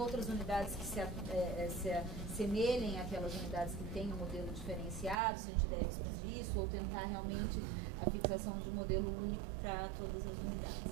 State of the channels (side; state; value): left; drops out; at 5.2 s